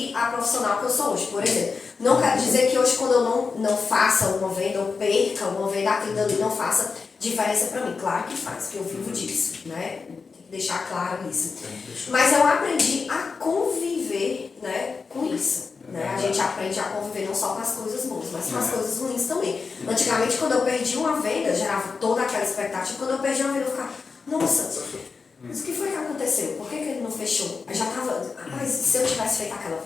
a profissional que eu sou hoje. Por exemplo, não quero dizer que hoje quando eu não faça uma venda ou perca uma venda, aquilo ali não faça diferença para mim. Claro que faz, porque eu vivo disso, né? Tem que deixar claro isso. Mas eu aprendi a conviver, né, com isso. Né? A gente aprende a conviver não só com as coisas boas, mas com as coisas ruins também. Antigamente, quando eu perdi uma venda, gerava toda aquela expectativa. Quando eu perdi uma venda, eu ficava, nossa, mas o que foi que aconteceu? Por que ele não fechou? Eu já estava, mas se eu tivesse feito aquela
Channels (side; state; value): right; quieter; 4.9 dB